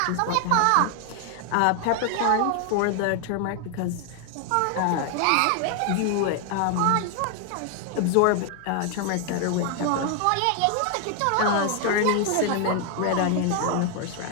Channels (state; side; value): different; both; correlation 0.00